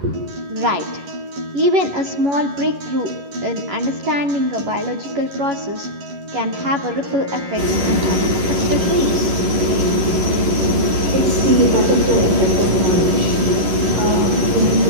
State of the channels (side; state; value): left; late; 11 ms